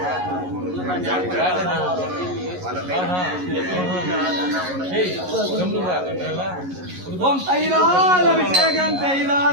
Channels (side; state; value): left; late; 11 ms